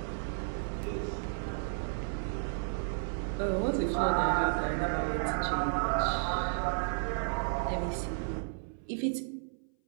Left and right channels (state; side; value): silent; left; 56 dB below the other